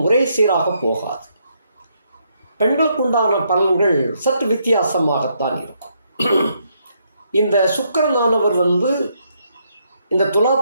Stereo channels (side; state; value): both; inverted; correlation -0.75